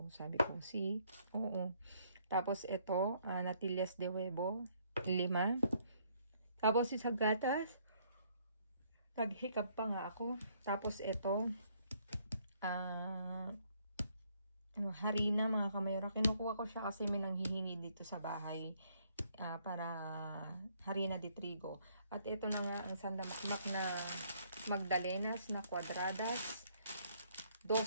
Sabi ko, oo. Tapos ito, natillas de huevo, 5. Tapos isa gatas, naghikap pa nga ako. Tapos ito, harina mga kamayora. Kinukuha ko siya kasi may nanghihingi dito sa bahay para harina de trigo. At ito na nga ang sandamakmak na magdalenas na kwadradas.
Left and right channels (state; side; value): inverted; both; correlation -0.67